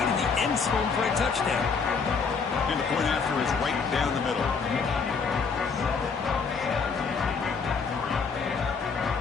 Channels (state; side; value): quieter; right; 5.3 dB